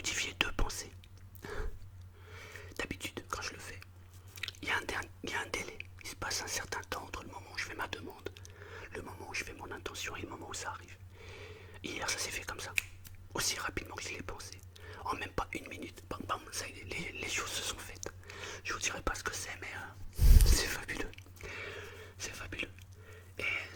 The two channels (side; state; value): both; identical; correlation 1.00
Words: 2 pensées. D'habitude, quand je le fais, il y a un délai. Il se passe un certain temps entre le moment où je fais ma demande, le moment où je fais mon intention et le moment où ça arrive. Hier, ça s'est fait comme ça. Aussi rapidement que je l'ai pensé. En même pas une minute. Bam, bam, ça y est, les choses se sont faites. Je vous dirai pas ce que c'est, mais c'est fabuleux. C'est fabuleux. Et